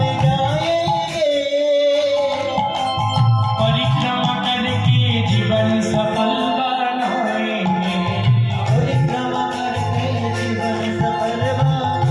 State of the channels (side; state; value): both; identical; correlation 1.00